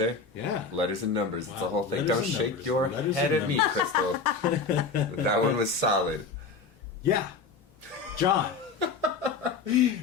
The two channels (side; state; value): right; quieter; 4.7 dB